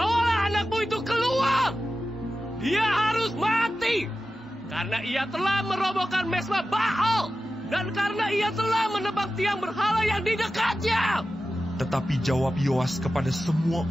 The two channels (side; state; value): both; normal; correlation 0.93